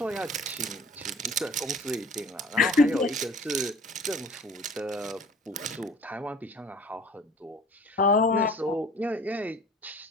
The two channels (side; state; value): both; normal; correlation 0.46